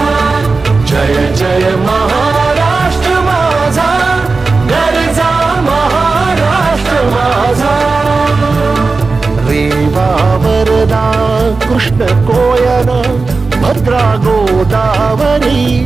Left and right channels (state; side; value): quieter; left; 4.0 dB